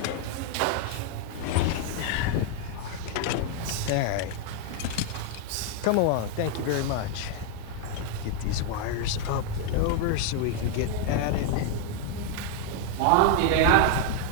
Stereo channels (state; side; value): different; both; correlation 0.00